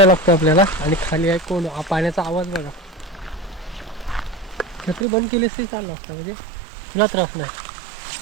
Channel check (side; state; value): left; drops out; at 5.1 s